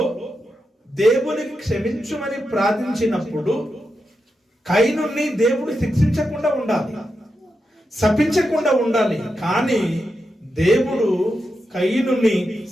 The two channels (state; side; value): normal; both; correlation 0.87